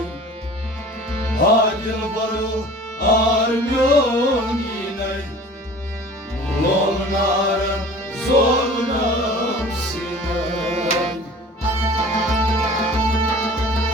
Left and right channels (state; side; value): normal; both; correlation 0.44